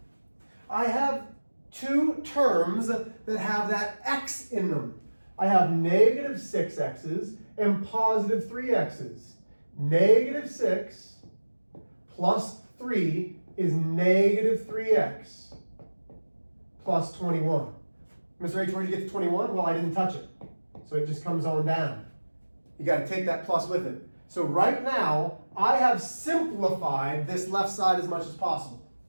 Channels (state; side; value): inverted; both; correlation -1.00